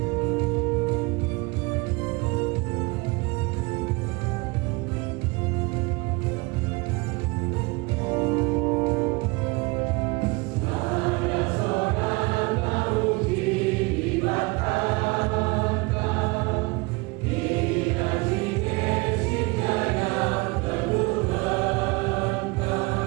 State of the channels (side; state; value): left; quieter; 26.2 dB